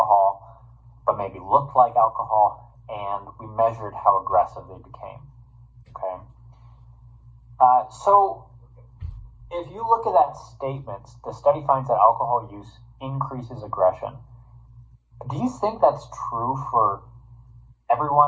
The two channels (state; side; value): identical; both; correlation 1.00